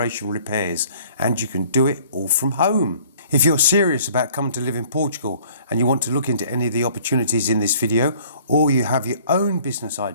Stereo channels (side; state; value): both; inverted; correlation -0.54